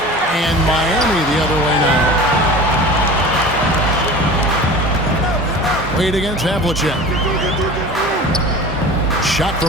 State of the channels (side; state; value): both; normal; correlation 0.38